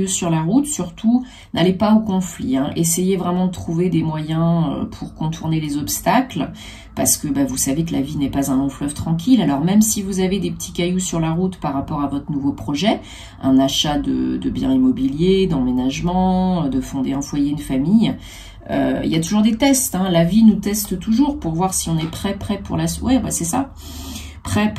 sur la route, surtout, n'allez pas au conflit. Hein. Essayez vraiment de trouver des moyens pour contourner les obstacles. Parce que bah, vous savez que la vie n'est pas un long fleuve tranquille. Alors même si vous avez des petits cailloux sur la route par rapport à votre nouveau projet, un achat de biens immobiliers, d'emménagement, de fonder un foyer, une famille, il y a toujours des tests. Hein. La vie nous teste toujours pour voir si on est prêt pour la suite. Ouais, bah, c'est ça.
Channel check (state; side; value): identical; both; correlation 1.00